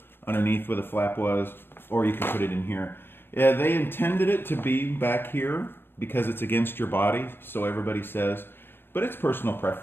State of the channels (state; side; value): late; right; 0.10 ms